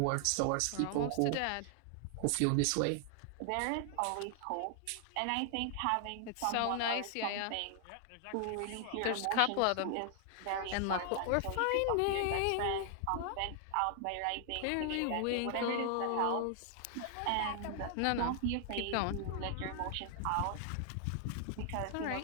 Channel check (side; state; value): both; different; correlation 0.00